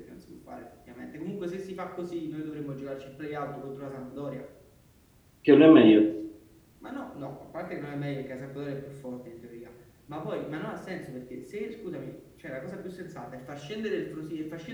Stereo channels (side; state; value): both; identical; correlation 1.00